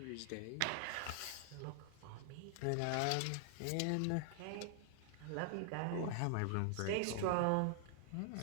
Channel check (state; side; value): different; both; correlation -0.01